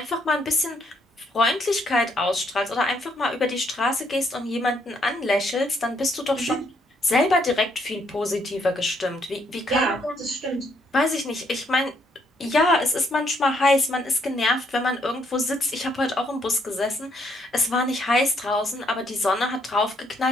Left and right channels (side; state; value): both; normal; correlation 0.72